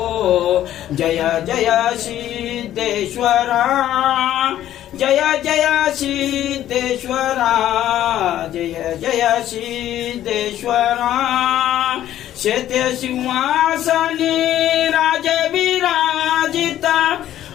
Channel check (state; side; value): quieter; right; 12.3 dB